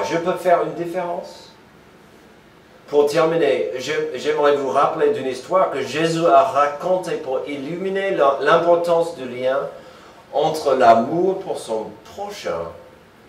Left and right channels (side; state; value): both; identical; correlation 1.00